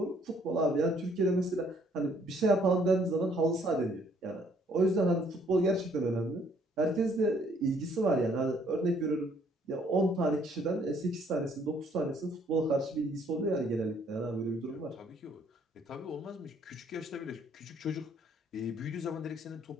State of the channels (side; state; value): both; normal; correlation 0.64